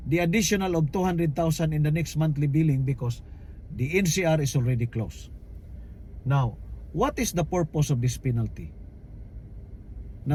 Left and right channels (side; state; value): both; identical; correlation 1.00